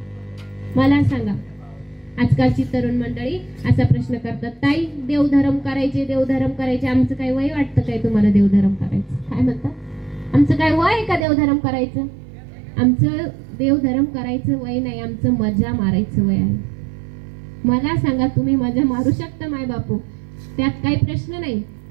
मला सांगा, आजकालची तरुण मंडळी असा प्रश्न करतात, ताई देवधर्म करायचे, आमचं काय वय वाटतं काय तुम्हाला देवधर्म करायचं? काय म्हणतात, आमचं काय वय आहे का देवधर्म करायचं? आमचं देवधर्म करायचं वय नाही, आमचं मजा मारायचं वय आहे. मला सांगा, तुम्ही मजा मारू शकता माय बापू, त्यात काही प्रश्न नाही.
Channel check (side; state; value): left; drops out; at 11.2 s